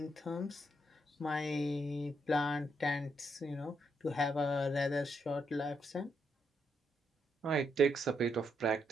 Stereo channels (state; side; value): normal; both; correlation 0.78